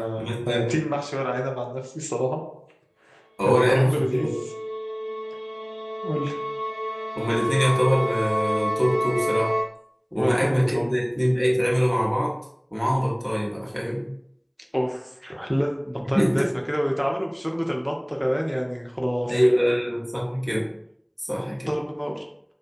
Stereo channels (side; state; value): both; identical; correlation 1.00